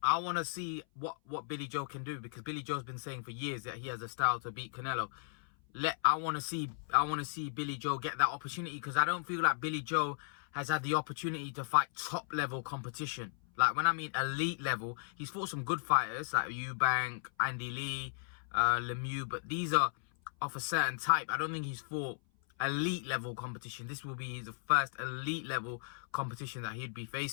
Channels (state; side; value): silent; right; 54 dB below the other